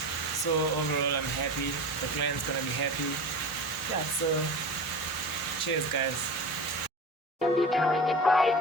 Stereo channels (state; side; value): normal; both; correlation 0.31